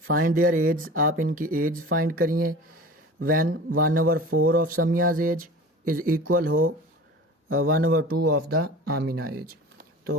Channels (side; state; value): both; normal; correlation 0.38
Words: देयर एज, आप इनकी एज फाइंड करिए। When 1/4 of Samiya's age is equal हो 1/2 ऑफ द आमिना एज।